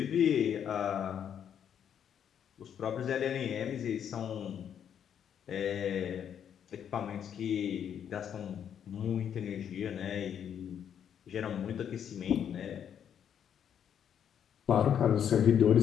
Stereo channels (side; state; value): right; quieter; 8.8 dB